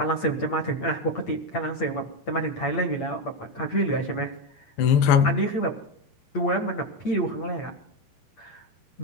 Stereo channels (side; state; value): right; late; 8.7 ms